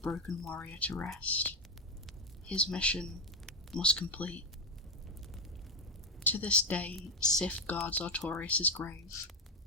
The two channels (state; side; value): normal; both; correlation 0.08